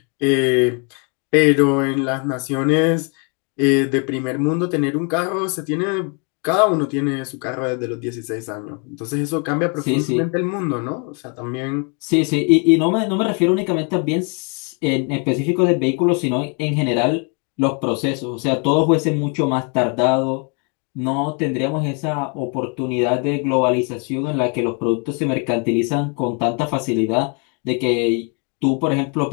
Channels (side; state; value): right; quieter; 36.4 dB